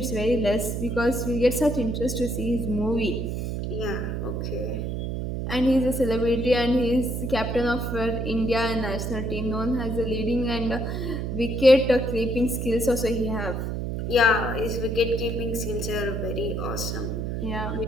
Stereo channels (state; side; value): noise; right; hum, 3 dB below the sound